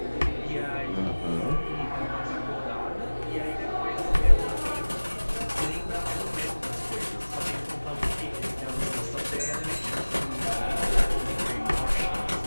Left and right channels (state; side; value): inverted; both; correlation -1.00